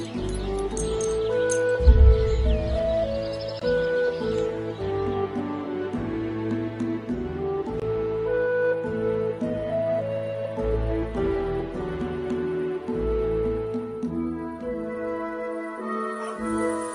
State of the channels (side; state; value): both; identical; correlation 1.00